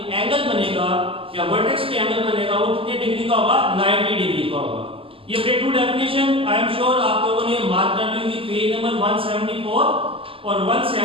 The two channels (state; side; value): late; left; 0.26 ms